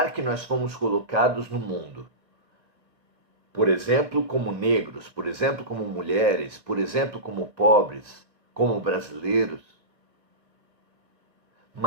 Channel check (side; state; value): left; late; 1.9 ms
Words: que nós fomos colocados no mundo, por exemplo, como negros, por exemplo, como mulheres, por exemplo, como pobres, como brasileiros,